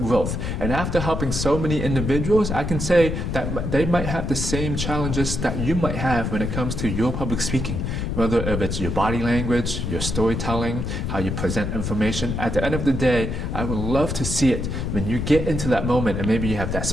And after helping so many individuals, I can say that they might have the same challenges that you might have when it comes to your public speaking. Whether if it's your body language, your storytelling, how you present information. At the end of the day, I would love to see it when you get into that moment and maybe you have that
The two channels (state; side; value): noise; left; rumble, 2 dB below the sound